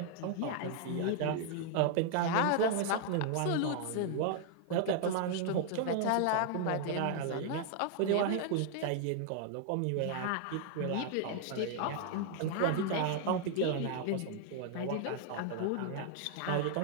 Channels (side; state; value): both; different; correlation 0.00